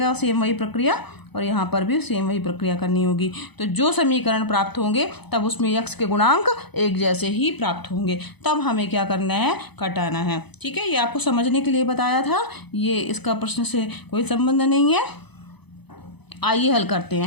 सेम वही प्रक्रिया और यहाँ पर भी सेम वही प्रक्रिया करनी होगी। तो जो समीकरण प्राप्त होंगे तब उसमें x के गुणांक एक जैसे ही प्राप्त होंगे। तब हमें क्या करना है, घटाना है। ठीक है, ये आपको समझने के लिए बताया था, ये इसका प्रश्न से कोई संबंध नहीं है। आइए हल करते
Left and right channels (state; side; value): late; right; 0.99 ms